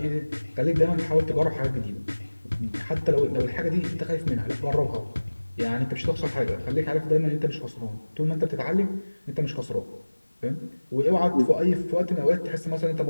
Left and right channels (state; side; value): inverted; both; correlation -1.00